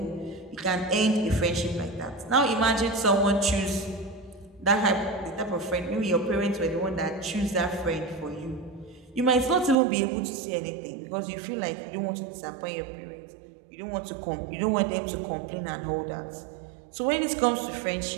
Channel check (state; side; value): drops out; left; at 9.8 s